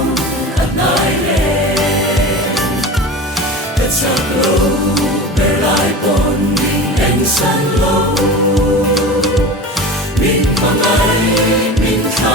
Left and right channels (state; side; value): normal; both; correlation 0.32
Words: at nai le at sang lo ber lai pom min en san lo min mang ai min